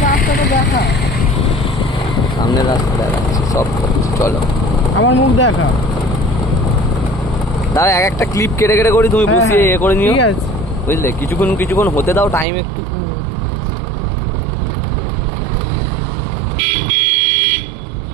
রাস্তাটা দেখা সামনের রাস্তা দেখাচ্ছে সব চলো আমার মুখ দেখা দাও এক একটা ক্লিপ কেটে কেটে করি তুমি বসিয়ে এ করে নিও ঠিক আছে বুঝলে কিছুক্ষণ হতে দাও টাইম একটু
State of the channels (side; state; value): left; drops out; at 12.5 s